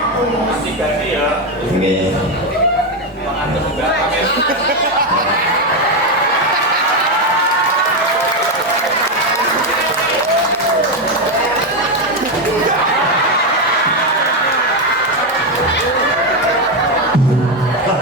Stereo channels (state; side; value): normal; both; correlation 0.08